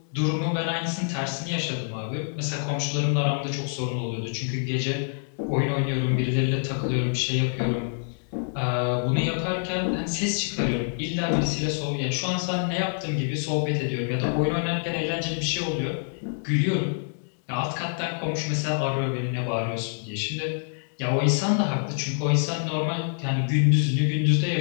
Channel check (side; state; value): right; silent; digital silence